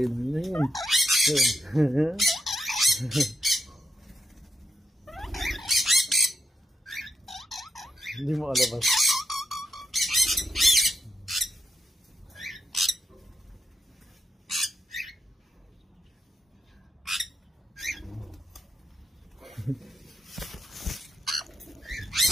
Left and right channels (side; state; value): both; normal; correlation 0.84